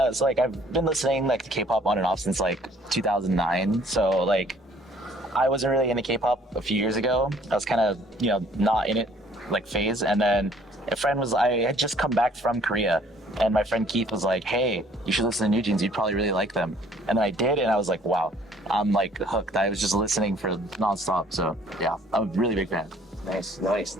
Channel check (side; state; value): both; normal; correlation 0.58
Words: it's like I've been listening like to K-pop on and off since like 2009. So like, I wasn't really into K-pop a few years ago. I was kind of, you know, not in it like phase. And then I had just come back from Korea, and my friend Keith was like, "Hey, you should listen to New Jeans. You'd probably really like them." And then I did, and I was like, "Wow, I'm like hooked." I was just listening for nonstop. So yeah, I'm a really big fan. Nice.